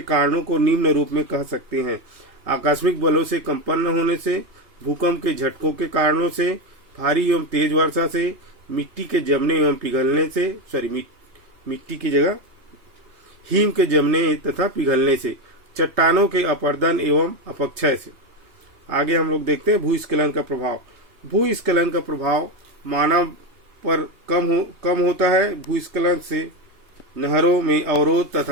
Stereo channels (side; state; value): left; late; 2.8 ms